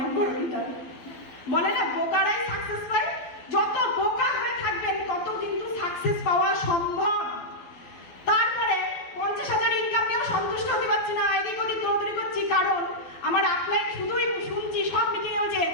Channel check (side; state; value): right; late; 12 ms